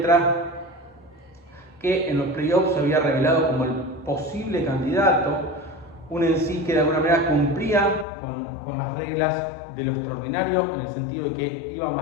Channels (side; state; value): right; drops out; at 8.1 s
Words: que en los playoffs se había revelado como el posible candidato, un en sí que de alguna manera cumplía con las reglas de lo extraordinario, en el sentido de que iba